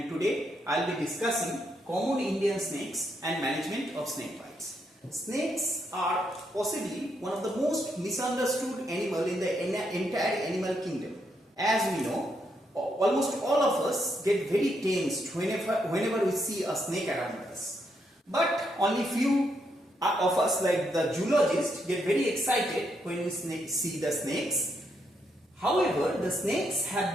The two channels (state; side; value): normal; both; correlation 0.78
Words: today I will be discussing common Indian snakes and management of snake bites. Snakes are possibly one of the most misunderstood animal in the entire animal kingdom. As we know, almost all of us get very tensed whenever we see a snake around us. But only few of us, like the zoologists, get very excited when we see the snakes. However, the snakes have